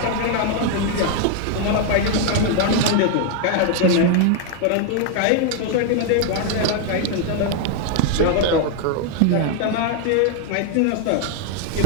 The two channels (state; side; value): different; both; correlation 0.00